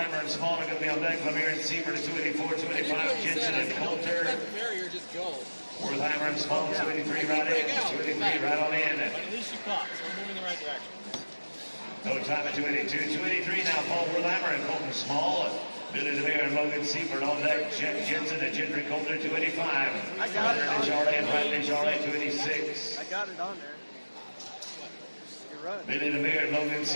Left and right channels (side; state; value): both; inverted; correlation -1.00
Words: and Small are going to be on deck. Lemire and Seifert at 284, 285. Jensen and Coulter. Barrier, just go. Wertheimer and Small, 283 right in. 283 right on in. But at least you caught, so we're moving in the right direction. No time at 282. 283 now, Paul Wertheimer and Colton Small. Billy Lemire and Logan Seifert on deck. Jeff Jensen and Gendry Coulter, 285. I got it. Desjardins and Brad Desjardins, 286. I got it on there. You're run. Billy DeMere and Logan